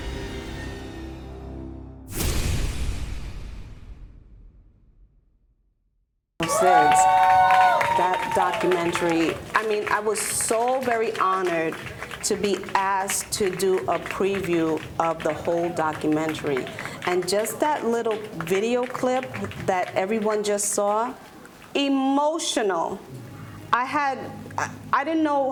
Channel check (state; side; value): identical; both; correlation 1.00